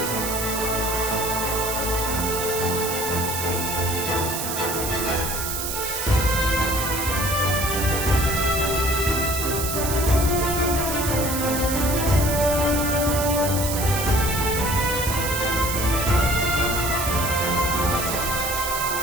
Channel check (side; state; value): right; noise; hiss, 3 dB below the sound